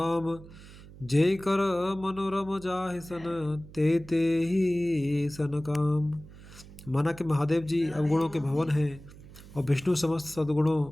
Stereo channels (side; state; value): right; noise; hum, 18 dB below the sound